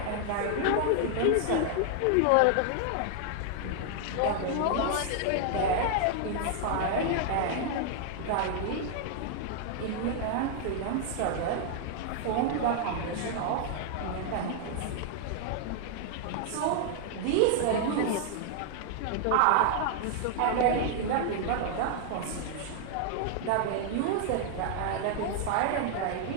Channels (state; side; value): different; both; correlation 0.00